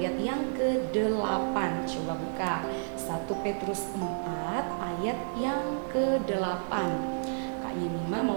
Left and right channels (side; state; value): left; silent; 57 dB below the other